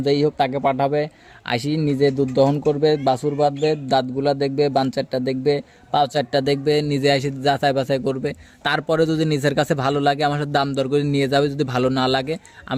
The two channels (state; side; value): identical; both; correlation 1.00